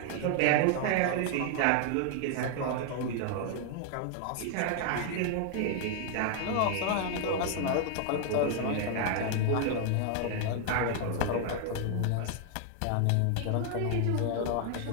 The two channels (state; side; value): different; both; correlation 0.00